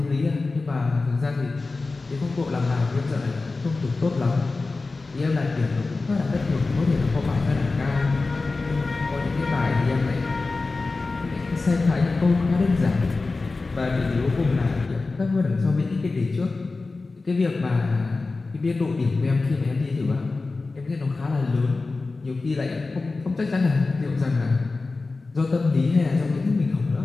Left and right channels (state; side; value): quieter; right; 3.7 dB